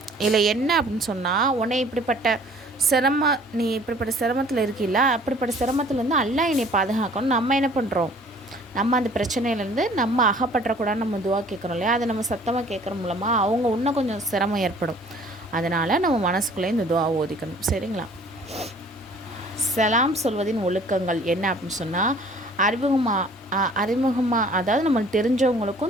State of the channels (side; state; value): both; normal; correlation 0.53